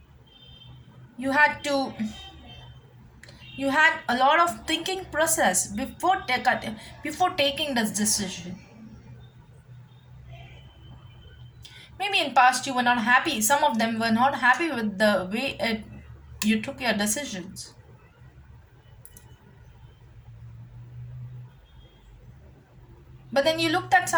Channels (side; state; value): both; identical; correlation 1.00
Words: you had to you had a lot of thinking process before taking this decision. Maybe in past you were not happy, some of them were not happy with the way you took your decisions. But then you looked at